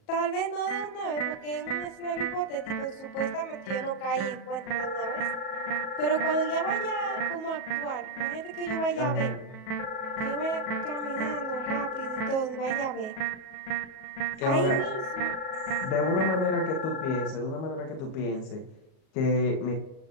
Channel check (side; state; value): right; late; 37 ms